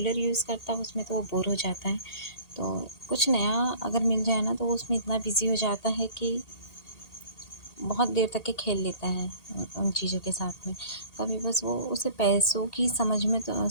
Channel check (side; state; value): right; late; 1.8 ms